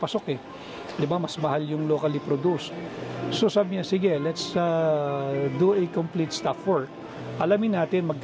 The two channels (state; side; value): identical; both; correlation 1.00